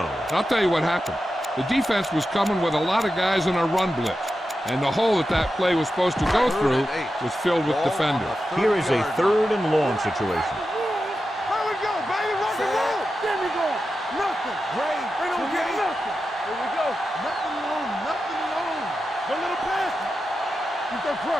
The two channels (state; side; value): normal; both; correlation 0.91